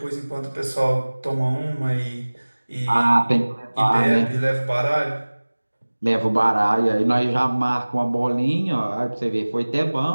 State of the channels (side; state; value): both; inverted; correlation -1.00